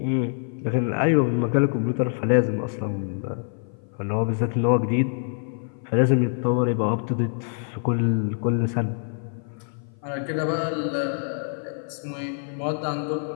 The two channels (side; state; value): right; silent; 55 dB below the other